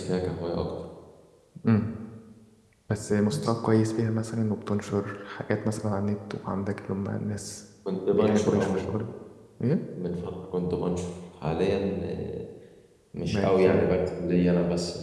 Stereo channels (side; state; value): both; identical; correlation 1.00